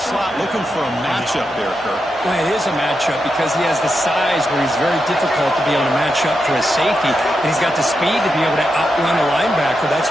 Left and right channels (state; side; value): normal; both; correlation 0.86